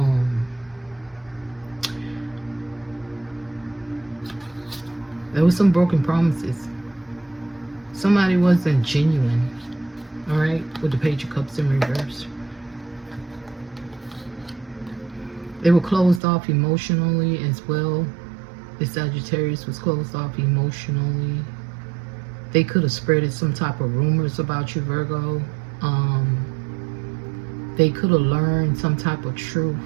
there was some broken promises. Somebody wasn't genuine. All right, with the Page of Cups in reverse. They were closed off emotionally as well. The Sagittarius was closed off emotionally. They could have spread some type of rumors about you, Virgo. They could have learned some type of truth.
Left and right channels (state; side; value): drops out; left; at 16.2 s